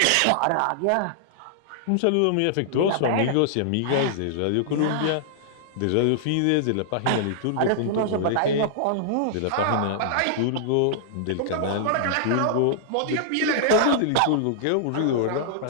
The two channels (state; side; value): different; both; correlation -0.01